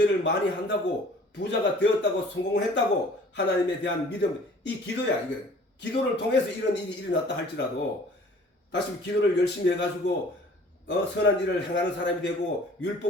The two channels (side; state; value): both; normal; correlation 0.51